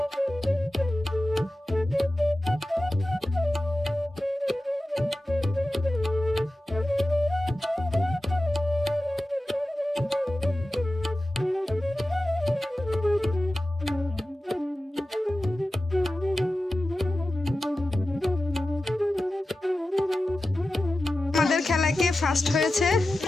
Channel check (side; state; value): both; normal; correlation 0.94